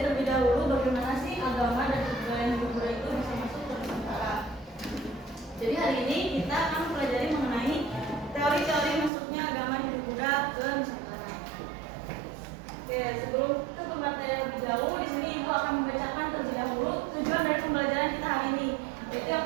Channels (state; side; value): drops out; left; at 9.1 s